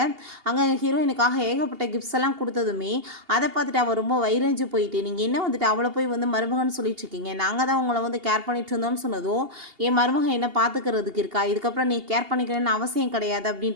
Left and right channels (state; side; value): late; left; 2.8 ms